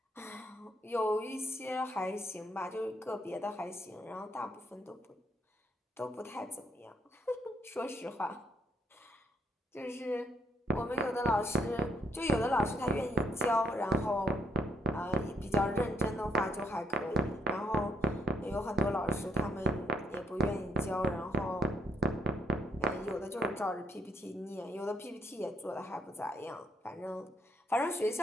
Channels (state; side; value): normal; both; correlation 0.73